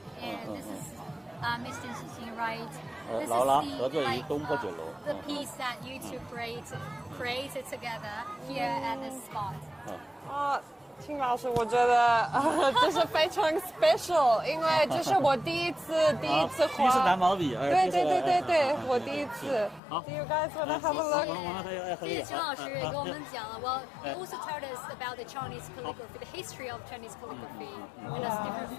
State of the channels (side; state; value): right; drops out; at 19.8 s